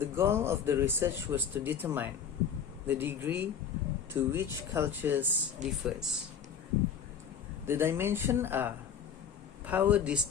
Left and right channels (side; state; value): right; quieter; 7.4 dB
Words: goal of the research was to determine the degree to which cultures differs. The dimensions are power